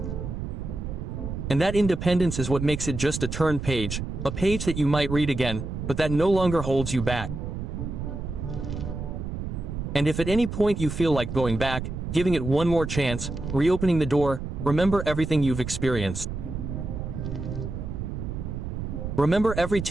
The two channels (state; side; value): noise; right; rumble, 5 dB below the sound